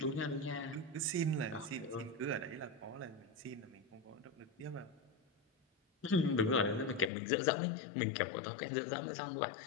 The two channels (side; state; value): right; drops out; at 7.1 s